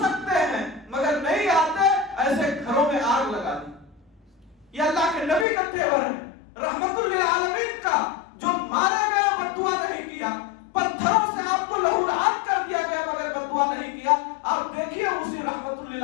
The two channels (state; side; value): drops out; right; at 5.5 s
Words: ہیں مگر نہیں آتے، ایسے گھروں میں آگ لگا دی۔ یہ اللہ کے نبی کا تیور ہے، رحمت للعالمین کا، جو مارے گئے بد دعا نہیں کیا، پتھروں سے آپ کو لہولہان کر دیا گیا مگر بد دعا نہیں کیا۔ آپ دیکھیے اسی رحمت